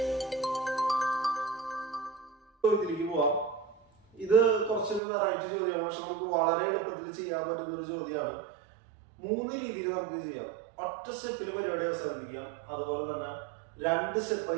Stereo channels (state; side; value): drops out; left; at 5.0 s